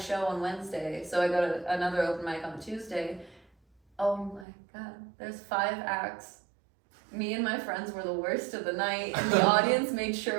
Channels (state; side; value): drops out; left; at 4.5 s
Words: show on Wednesday. So I go to another open mic on Tuesday. Oh my god, there's 5 acts. Me and my friends were the worst of the night, and the audience made